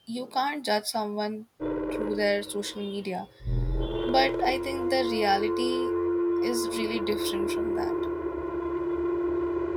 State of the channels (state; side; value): identical; both; correlation 1.00